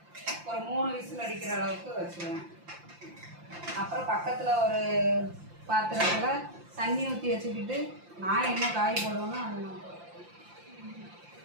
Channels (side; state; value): left; late; 5.8 ms